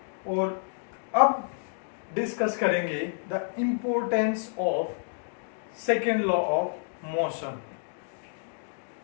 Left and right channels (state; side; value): silent; right; digital silence